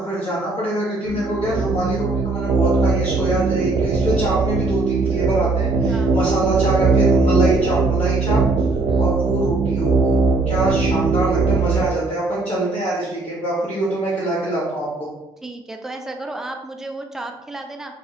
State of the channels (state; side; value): quieter; left; 3.1 dB